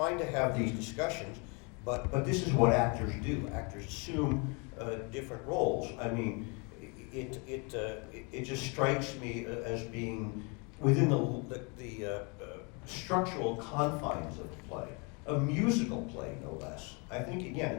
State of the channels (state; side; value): quieter; right; 32.6 dB